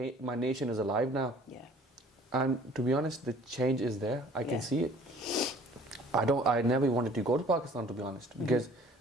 nation is alive now. Yeah. And to be honest, the change is there. I can see it. I never wanted to go to Pakistan, to be honest, because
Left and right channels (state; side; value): normal; both; correlation 0.53